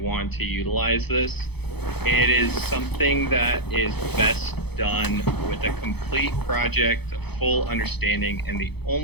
want to utilize this. It is something that is best done with a complete project, a full understanding, and the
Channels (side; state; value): right; late; 0.98 ms